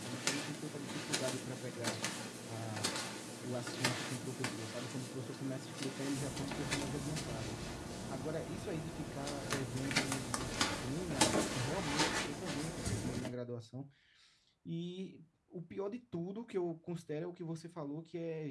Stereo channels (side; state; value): both; identical; correlation 1.00